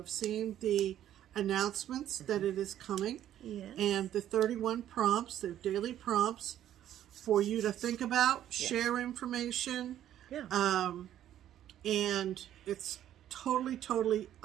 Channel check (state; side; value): quieter; left; 11.5 dB